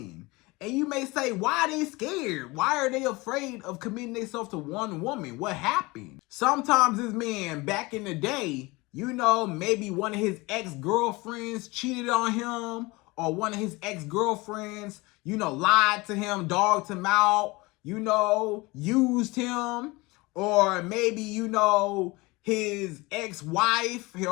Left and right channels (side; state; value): right; quieter; 23.4 dB